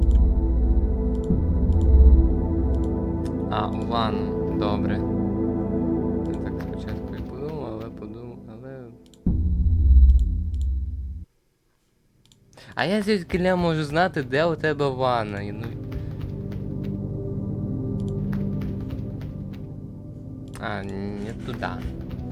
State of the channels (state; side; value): identical; both; correlation 1.00